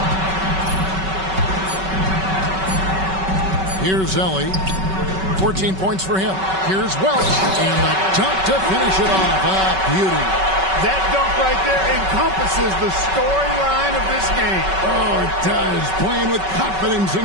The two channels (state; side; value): late; left; 5.3 ms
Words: Here's Ellie. 14 points for him. Here's Welch. And the dunk to finish it off. A beauty. That dunk right there encompasses the storyline of this game. Oh, it does. Playing with confidence